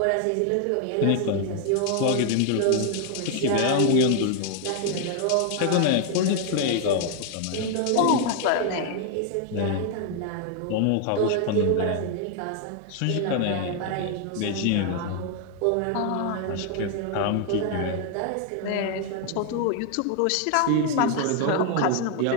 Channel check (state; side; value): different; both; correlation 0.00